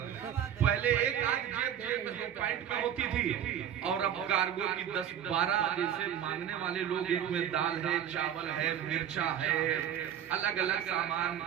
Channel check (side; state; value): left; quieter; 9.9 dB